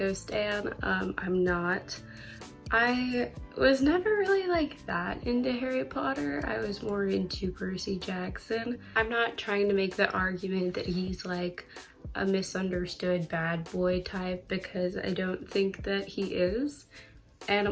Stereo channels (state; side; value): identical; both; correlation 1.00